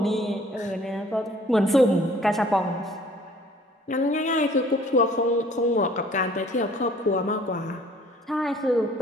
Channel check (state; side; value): normal; both; correlation 0.54